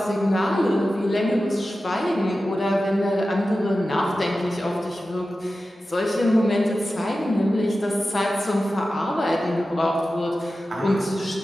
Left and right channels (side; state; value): both; normal; correlation 0.94